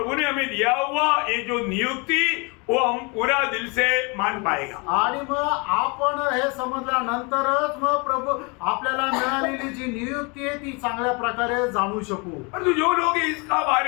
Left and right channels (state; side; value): quieter; right; 30.4 dB